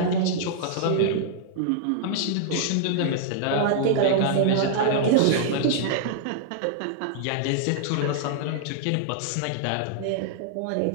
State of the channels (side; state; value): both; different; correlation -0.01